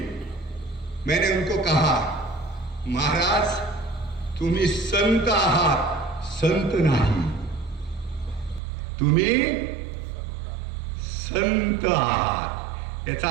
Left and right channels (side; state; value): left; drops out; at 8.6 s